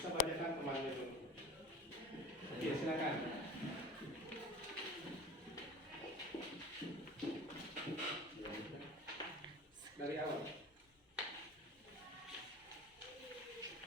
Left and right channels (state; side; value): normal; both; correlation 0.38